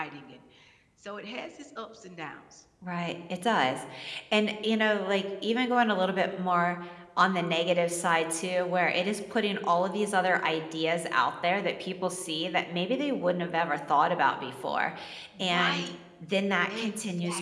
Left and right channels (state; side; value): identical; both; correlation 1.00